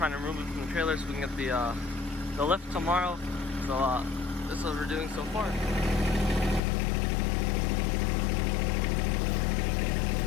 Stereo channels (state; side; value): drops out; right; at 6.6 s